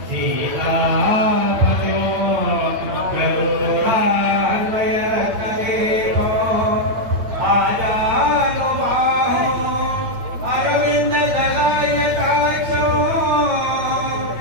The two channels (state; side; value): late; left; 9.0 ms